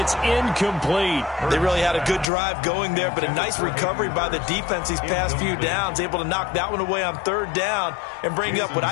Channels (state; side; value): drops out; right; at 2.2 s